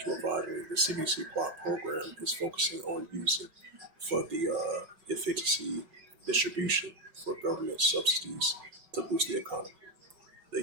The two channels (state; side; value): late; left; 5.3 ms